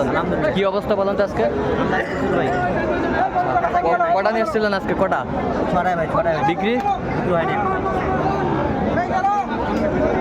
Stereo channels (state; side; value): identical; both; correlation 1.00